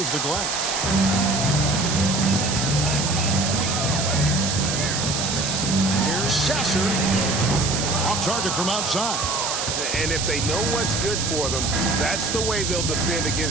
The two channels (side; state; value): right; noise; hiss, 1 dB below the sound